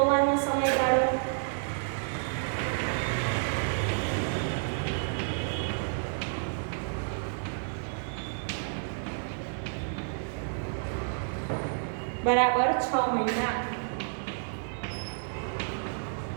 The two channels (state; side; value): silent; left; digital silence